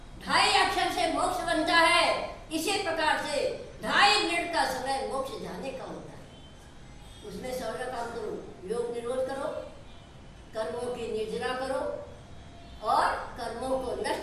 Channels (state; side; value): identical; both; correlation 1.00